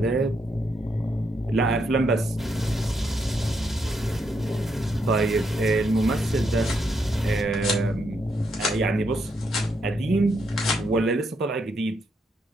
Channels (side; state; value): both; normal; correlation 0.78